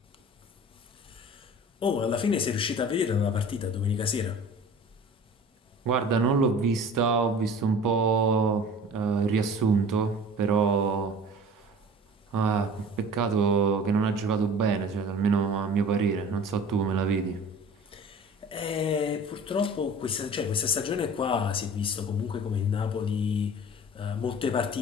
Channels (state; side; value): normal; both; correlation 0.42